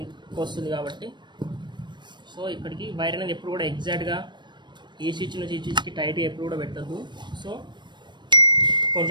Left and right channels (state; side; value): late; left; 0.22 ms